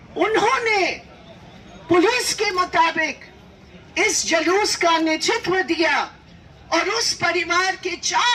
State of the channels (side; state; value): both; identical; correlation 1.00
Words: उन्होंने पुलिस के मुताबिक इस जुलूस का नेतृत्व दिया और उस परिवार के